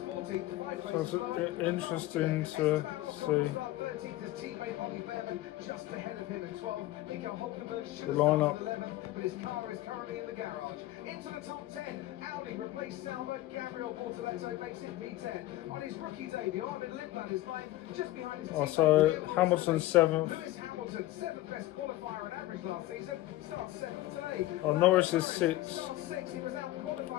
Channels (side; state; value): right; quieter; 16.6 dB